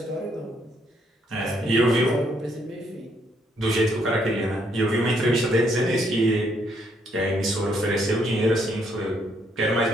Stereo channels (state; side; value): normal; both; correlation 0.71